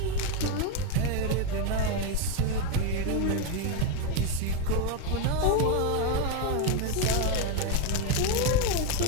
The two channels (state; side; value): different; both; correlation 0.03